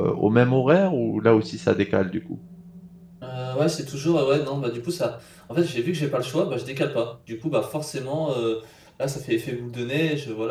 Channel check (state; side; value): identical; both; correlation 1.00